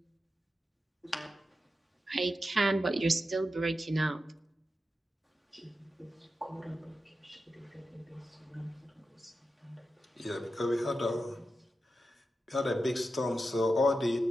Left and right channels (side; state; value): both; normal; correlation 0.90